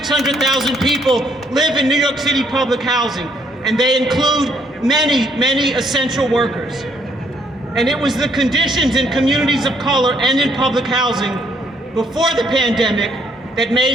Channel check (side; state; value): both; normal; correlation 0.69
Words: people live in New York City public housing, and they include many essential workers. And it was the conditions in communities of color and in public housing before the pandemic that